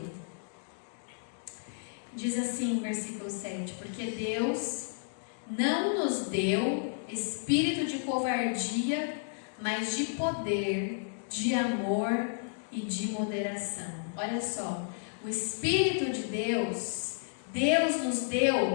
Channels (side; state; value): right; silent; digital silence